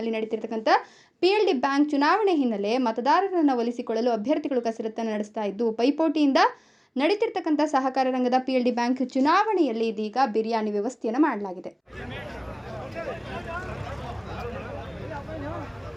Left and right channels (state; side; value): identical; both; correlation 1.00